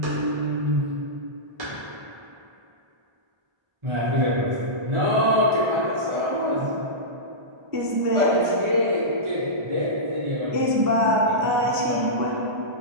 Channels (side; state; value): left; late; 1.2 ms